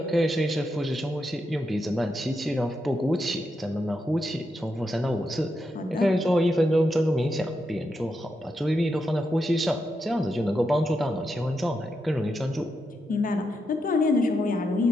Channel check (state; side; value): normal; both; correlation 0.84